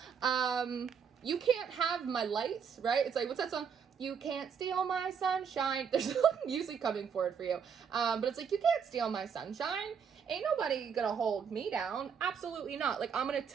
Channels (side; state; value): left; quieter; 6.9 dB